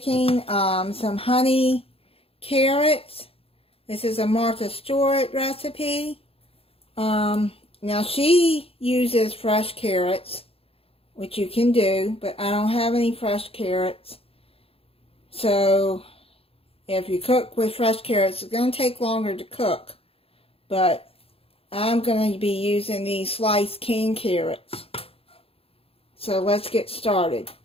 some honey carrots. This is a Martha Stewart recipe. Now she uses fresh carrots, which you can do, but I don't have any fresh carrots. So if you cook with fresh carrots, it's going to take longer to cook. But I'm going to be using these sliced canned carrots. So let's get started.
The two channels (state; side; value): late; right; 0.28 ms